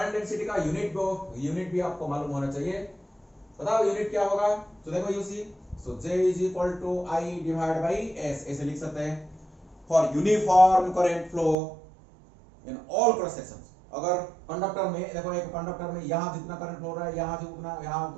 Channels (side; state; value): left; drops out; at 11.6 s